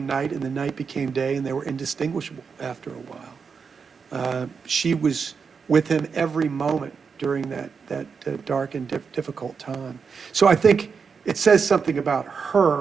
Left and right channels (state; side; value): quieter; left; 5.7 dB